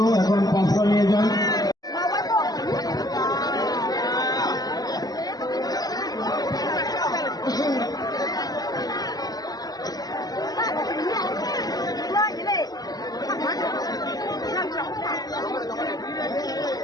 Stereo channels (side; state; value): right; late; 0.18 ms